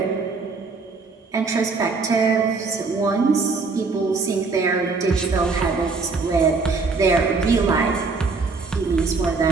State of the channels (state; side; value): quieter; left; 4.3 dB